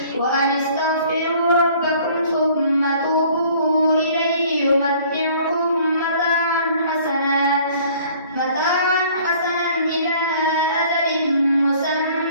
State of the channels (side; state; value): both; inverted; correlation -0.54